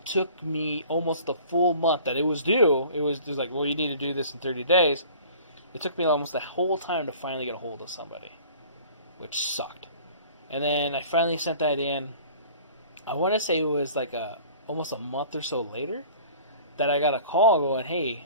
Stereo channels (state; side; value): inverted; both; correlation -0.47